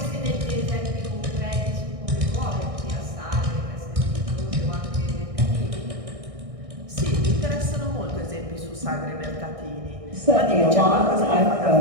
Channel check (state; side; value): late; left; 1.6 ms